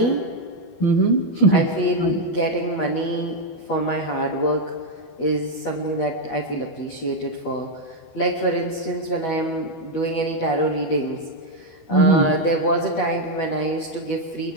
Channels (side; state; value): right; late; 12 ms